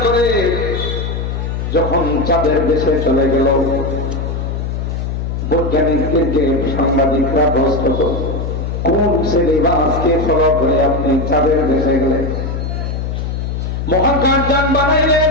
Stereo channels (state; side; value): noise; left; hum, 3 dB below the sound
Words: করে যখন চাঁদের দেশে চলে গেল বৈজ্ঞানিকদেরকে সাংবাদিকরা প্রশ্ন করল কোন সিলেবাসকে ফলো করে আপনি চাঁদের দেশে গেলেন মহাকাশযান